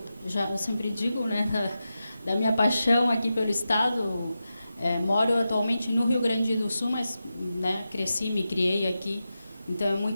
eu sempre digo, né, da minha paixão aqui pelo estado. Moro atualmente no Rio Grande do Sul, mas, né, cresci, me criei aqui. Então, é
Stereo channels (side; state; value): both; inverted; correlation -0.91